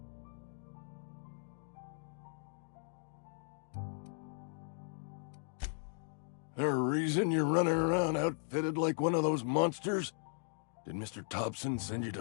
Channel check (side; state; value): right; silent; digital silence